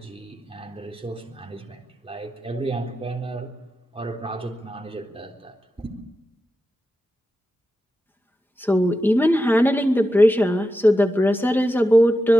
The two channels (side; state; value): both; normal; correlation 0.90